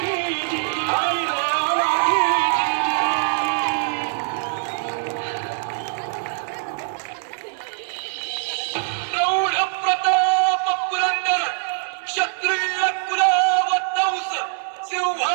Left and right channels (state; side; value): silent; left; digital silence